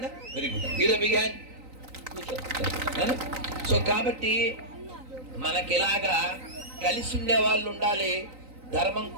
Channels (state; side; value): late; left; 3.9 ms